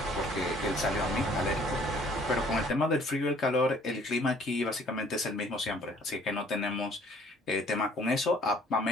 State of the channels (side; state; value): both; normal; correlation 0.58